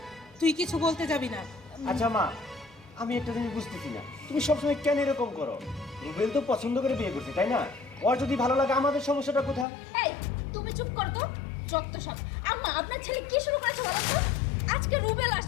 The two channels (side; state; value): right; drops out; at 9.7 s